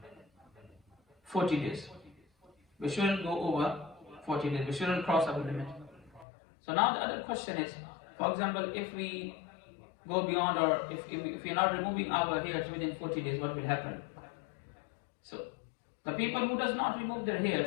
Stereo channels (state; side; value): drops out; right; at 6.2 s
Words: 40 days. We shouldn't go over 40 days. We shouldn't cross our limit. So now the other question is, for example, if we go beyond, or if we are not removing our hairs within 40 days, what will happen? So the people who does not remove their